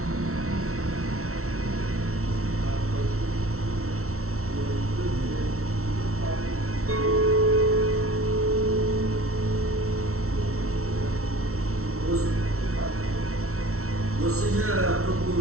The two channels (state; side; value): late; left; 0.63 ms